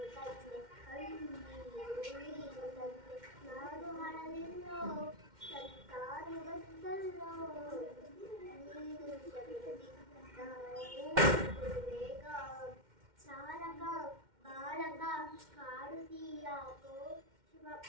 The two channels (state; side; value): late; left; 2.1 ms